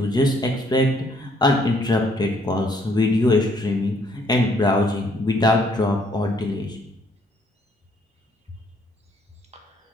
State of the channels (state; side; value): normal; both; correlation 0.66